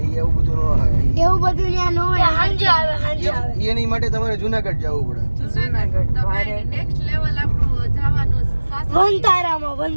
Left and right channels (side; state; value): both; inverted; correlation -1.00